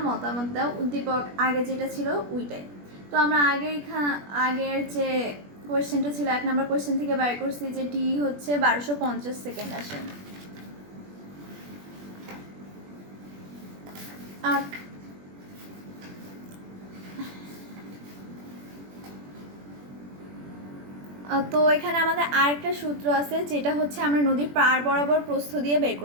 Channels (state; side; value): late; left; 21 ms